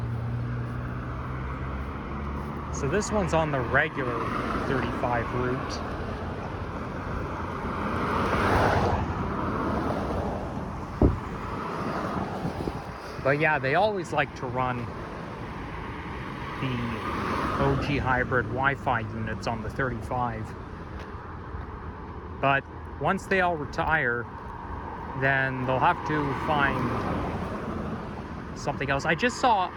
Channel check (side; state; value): both; identical; correlation 1.00